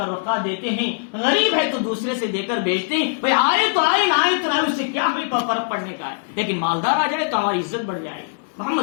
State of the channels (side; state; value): right; silent; 65 dB below the other